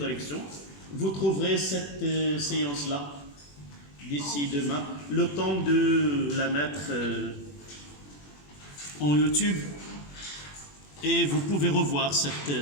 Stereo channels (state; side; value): late; right; 21 ms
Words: vous trouverez cette séance-là d'ici demain, le temps de la mettre en YouTube et vous pouvez revoir